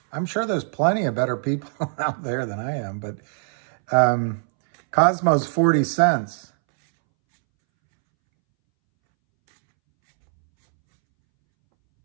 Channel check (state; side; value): silent; left; 64 dB below the other